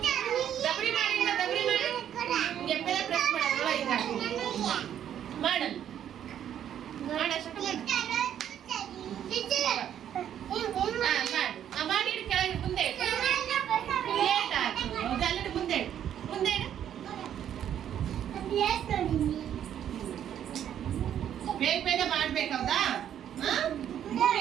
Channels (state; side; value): quieter; left; 10.0 dB